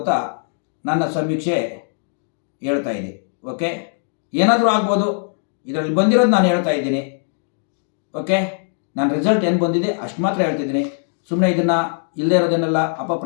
ನನ್ನ ಸಮೀಕ್ಷೆ ಹೇಳ್ತಾ ಇದೆ. ಓಕೆ, ಏನಾದರೂ ಆಗ್ಬೋದು, ಇದರಲ್ಲಿ ಬಂದಿರೋದು ನಾನು ಹೇಳ್ತಾ ಇದ್ದೀನಿ. ಓಕೆ, ನನ್ನ ರಿಸಲ್ಟ್ ಏನು ಬಂದಿದೆ ಅಷ್ಟು ಮಾತ್ರ ಹೇಳ್ತಿದ್ದೀನಿ. ಸುಮ್ಮನೆ ಇದನ್ನು ಇಲ್ಲದೇ ಇರೋದನ್ನೆಲ್ಲ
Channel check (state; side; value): silent; right; digital silence